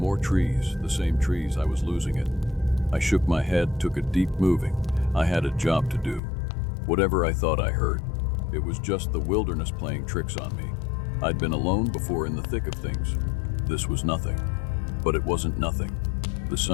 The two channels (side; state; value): right; drops out; at 6.2 s